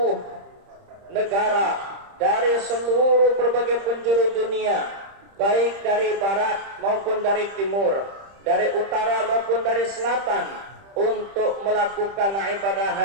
negara, dari seluruh berbagai penjuru dunia, baik dari barat maupun dari timur, dari utara maupun dari selatan, untuk melakukan ibadah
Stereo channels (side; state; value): left; late; 30 ms